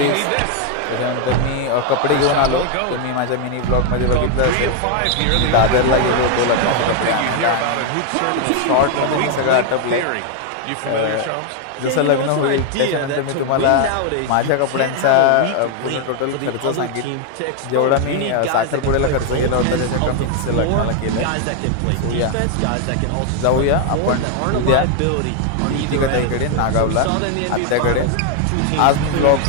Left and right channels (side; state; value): both; different; correlation 0.01